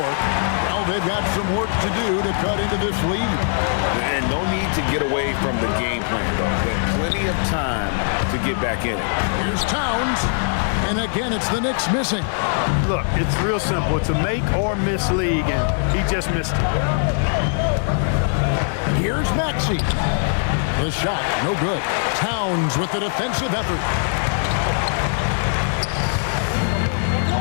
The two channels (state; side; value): silent; right; digital silence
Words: Well, they've got some work to do to cut into this lead. And no need to get away from the game plan, though. Got plenty of time to get back in it. Here's Towns. And again, it's the Knicks missing. Look, it's real simple. It's a make or miss league, and he just missed it. Here's Maxey. The shot, no good. Towns with the defensive effort.